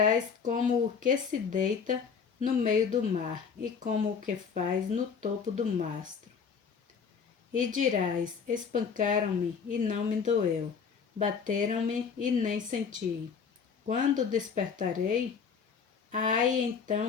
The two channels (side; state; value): right; quieter; 6.2 dB